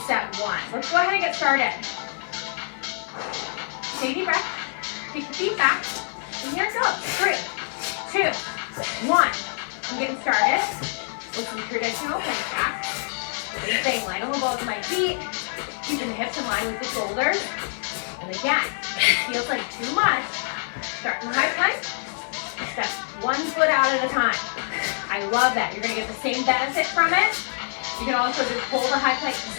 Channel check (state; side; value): silent; right; digital silence